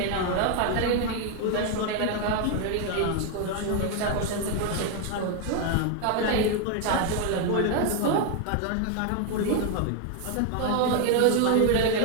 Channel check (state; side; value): different; both; correlation 0.01